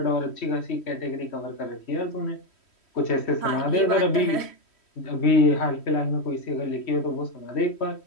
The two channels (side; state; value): right; late; 3.1 ms